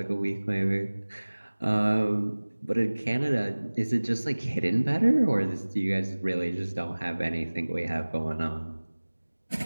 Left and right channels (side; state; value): both; inverted; correlation -1.00